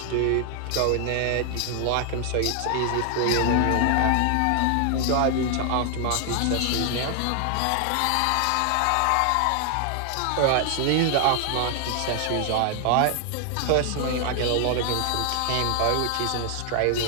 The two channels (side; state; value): both; different; correlation 0.00